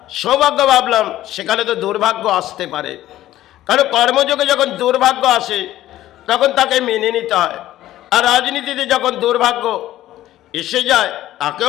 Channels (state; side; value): quieter; right; 14.1 dB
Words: সৌভাগ্য ভাবলাম, সেখানে তো দুর্ভাগ্য আসতে পারে। কারণ কর্মযোগে যখন দুর্ভাগ্য আসে, তখন তাকে মেনে নিতে হয়। আর রাজনীতিতে যখন দুর্ভাগ্য এসে যায়,